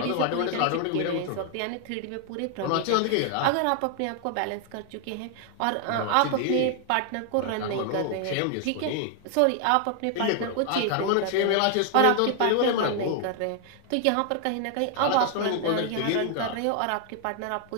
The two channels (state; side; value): different; both; correlation 0.00